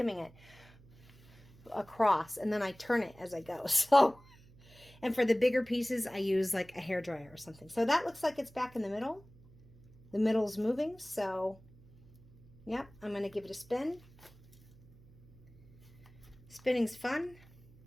it across, and then I turn it as I go. So, and for the bigger pieces, I use like a hairdryer or something. So that looks like it's back in the middle. The middle's moving, so yep, I'm going to give it a spin. Spinning's fun.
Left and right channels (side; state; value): right; noise; hum, 25 dB below the sound